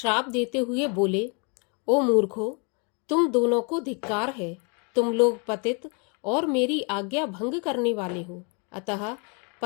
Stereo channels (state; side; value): quieter; right; 35.5 dB